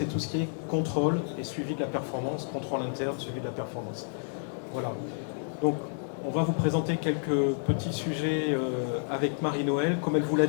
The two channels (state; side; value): silent; right; digital silence